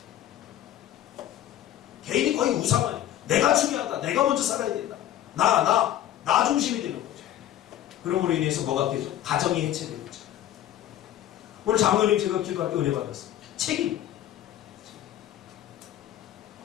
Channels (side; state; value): right; quieter; 12.1 dB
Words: 개인이 거의 우상화해. 내가 중요하다. 내가 먼저 살아야 된다. 나 중심이 되는 거죠. 그러므로 인해서 뭐가 되죠? 가정이 해체되는 거죠. 오늘 장로님 제가 기도할 때 은혜 받았어요. 책임.